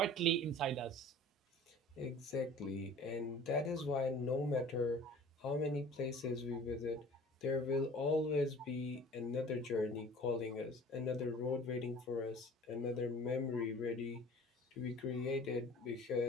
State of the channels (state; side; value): normal; both; correlation 0.45